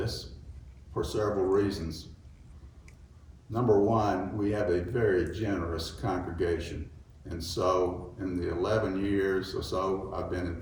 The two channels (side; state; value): both; identical; correlation 1.00